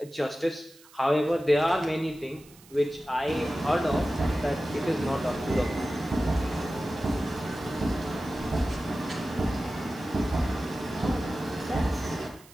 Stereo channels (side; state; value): right; noise; hiss, 24 dB below the sound